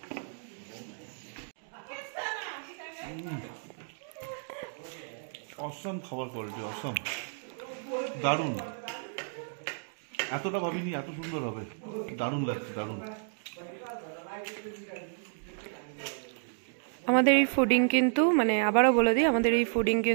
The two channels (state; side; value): silent; left; digital silence